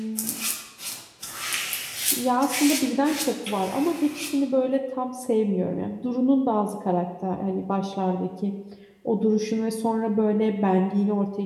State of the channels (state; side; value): identical; both; correlation 1.00